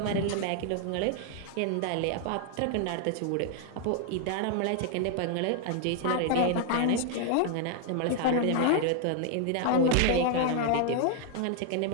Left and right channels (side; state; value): both; different; correlation 0.00